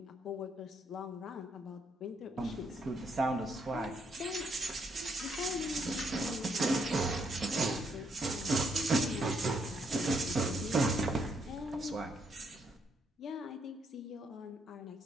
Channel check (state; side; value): normal; both; correlation 0.74